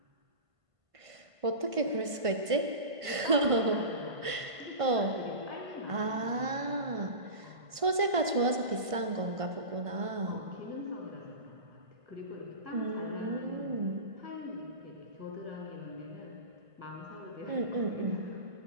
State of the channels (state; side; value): late; left; 1.5 ms